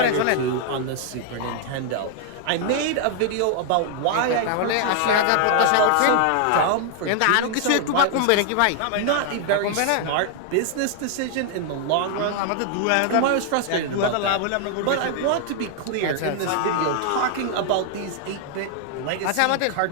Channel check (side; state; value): both; different; correlation 0.00